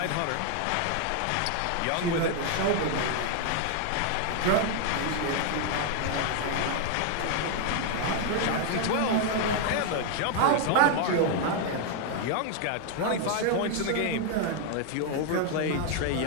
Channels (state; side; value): different; both; correlation 0.00